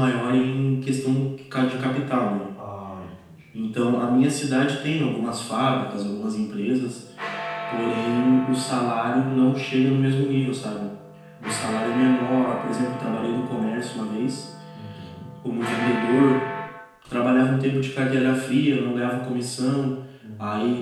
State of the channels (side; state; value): both; identical; correlation 1.00